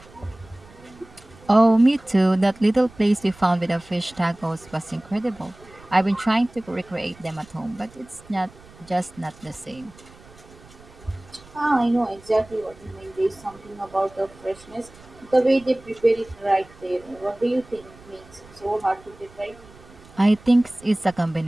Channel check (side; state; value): right; noise; rumble, 23 dB below the sound